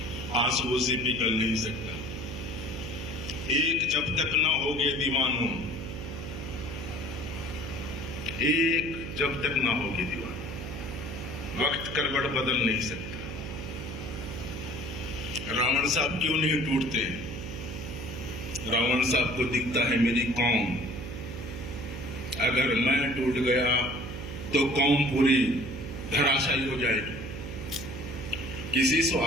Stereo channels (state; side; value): noise; right; hum, 8 dB below the sound